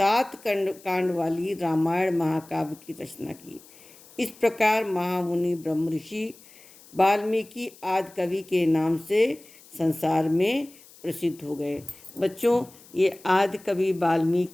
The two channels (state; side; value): noise; left; hiss, 23 dB below the sound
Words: कांड वाली रामायण महाकाव्य की रचना की। इस प्रकार महामुनि ब्रह्म ऋषि वाल्मीकि आदि कवि के नाम से संसार में प्रसिद्ध हो गए। बच्चों, ये आदि कवि